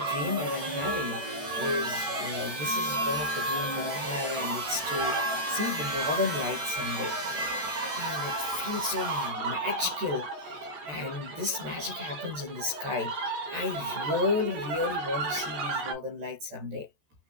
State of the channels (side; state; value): left; late; 14 ms